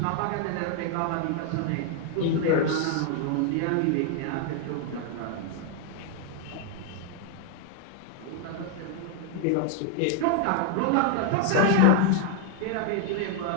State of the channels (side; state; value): both; different; correlation 0.00